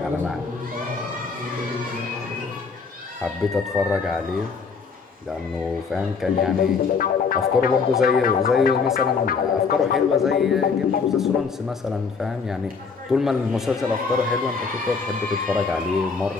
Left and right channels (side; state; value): right; quieter; 5.3 dB